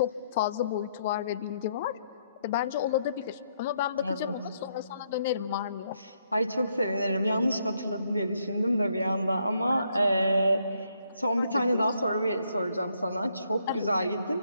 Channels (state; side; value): inverted; both; correlation -0.73